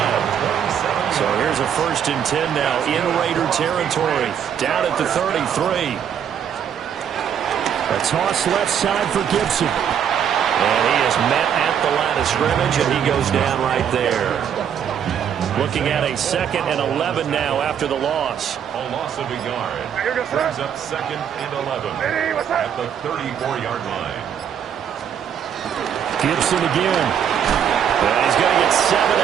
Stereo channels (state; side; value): quieter; left; 8.6 dB